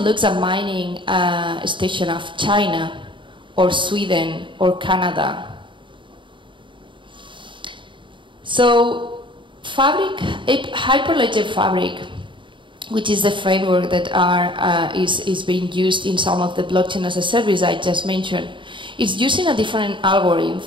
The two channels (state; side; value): late; left; 0.24 ms